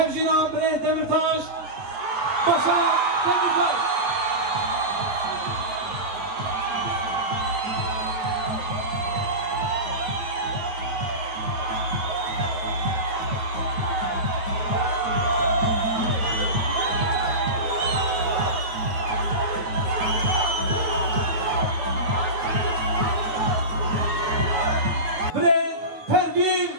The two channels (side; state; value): left; late; 9.2 ms